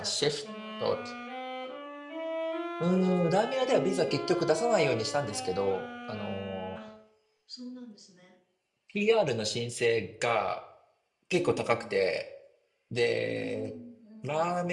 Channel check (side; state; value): both; identical; correlation 1.00